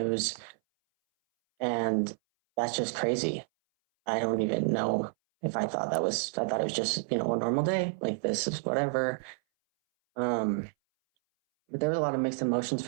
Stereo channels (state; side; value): silent; left; 58 dB below the other